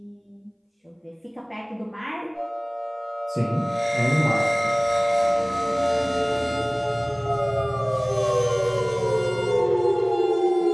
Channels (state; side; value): identical; both; correlation 1.00